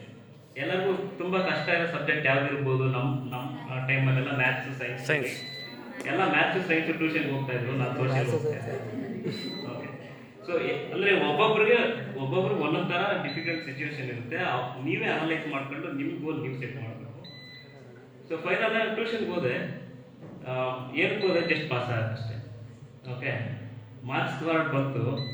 ಎಲ್ಲರಿಗೂ ತುಂಬ ಕಷ್ಟ ಇರೋ ಸಬ್ಜೆಕ್ಟ್ ಯಾವ್ದಿರ್ಬೋದು. ನಮ್ಮ ಟೈಮಲ್ಲೆಲ್ಲ ಮ್ಯಾಥ್ಸ್ ಸೈನ್ಸ್ ಎಲ್ಲ ಮ್ಯಾಥ್ಸ್ ಸೈನ್ಸ್ ಟ್ಯೂಷನ್ಗೆ ಹೋಗ್ತಾ ಇದ್ರು, ನಾನು ಸೋಷಿಯಲ್ ಹೋಗ್ತಾ ಇದ್ದೆ. ಓಕೆ, ಸೊ ಅಂದರೆ ಒಬ್ಬೊಬ್ರಿಗೆ ಒಂದೊಂದು ಥರ ಡಿಫಿಕಲ್ಟ್ ಸಿಚುವೇಶನ್ ಇರುತ್ತೆ. ನೀವೇ ಅನಲೈಸ್ ಮಾಡ್ಕೊಂಡು ನಿಮ್ಮ ಗೋಲ್ ನೀವು ಸೆಟ್ ಮಾಡಬೇಕು. ಸೊ ಫೈನಲ್ ಟ್ಯೂಷನ್ಗೆ ಹೋದೆ, ಏನಕ್ಕೆ ಹೋದೆ, ಜಸ್ಟ್ ಪಾಸ್ ಆಗೋಷ್ಟೇ. ಓಕೆ, ಮಾರ್ಕ್ಸ್ ಕಾರ್ಡ್ ಬಂತು.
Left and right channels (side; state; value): both; identical; correlation 1.00